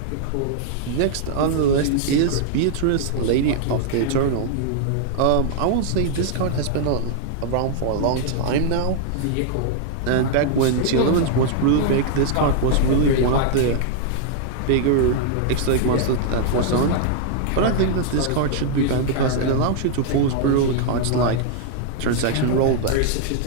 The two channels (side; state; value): both; different; correlation -0.01